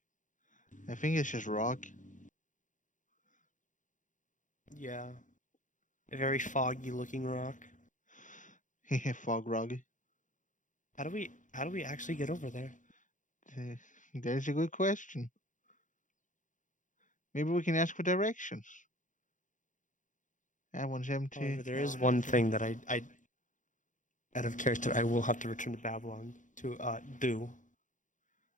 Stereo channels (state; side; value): late; right; 0.37 ms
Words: I think it's just rock. Yeah. A very foggy looking rock. Fog rock. How do we actually get over there? That's a good question. Maybe we can ask for directions. That one's empty. However, there is one thing that I out of character I will have to return to Babylon to do.